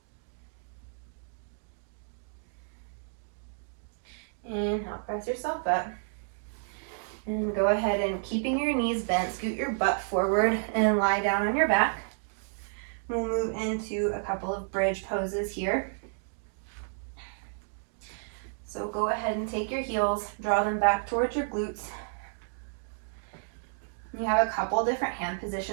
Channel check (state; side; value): silent; left; digital silence